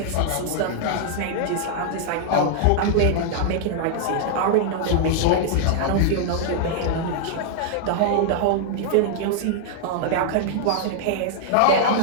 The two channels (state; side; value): different; both; correlation -0.01